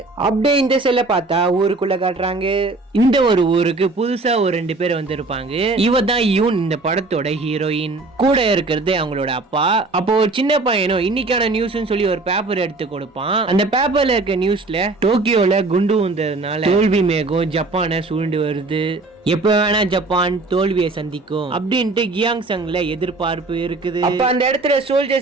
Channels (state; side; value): quieter; left; 3.4 dB